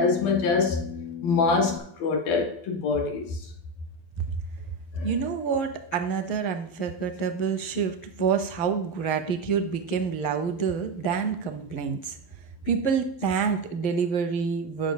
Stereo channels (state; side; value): late; right; 12 ms